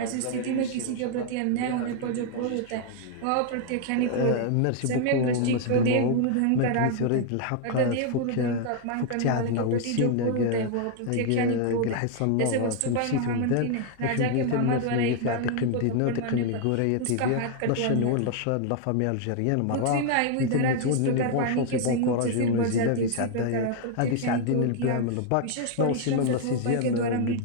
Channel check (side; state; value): both; different; correlation 0.00